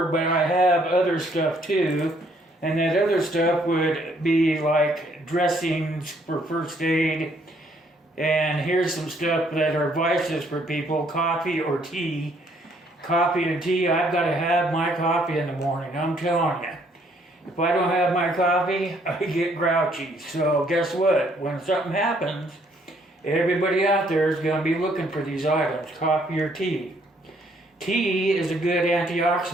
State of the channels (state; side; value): normal; both; correlation 0.66